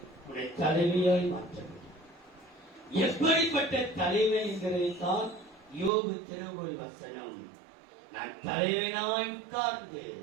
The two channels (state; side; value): drops out; left; at 5.9 s